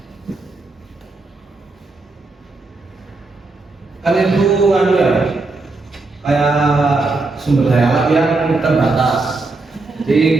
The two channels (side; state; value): left; quieter; 3.4 dB